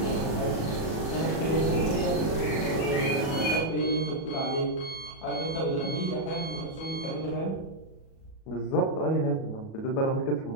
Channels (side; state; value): right; late; 37 ms